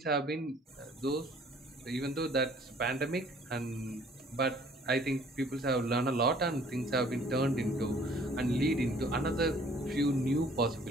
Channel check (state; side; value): normal; both; correlation 0.56